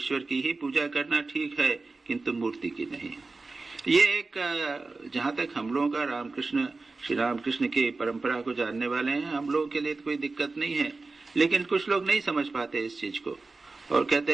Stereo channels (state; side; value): quieter; left; 3.7 dB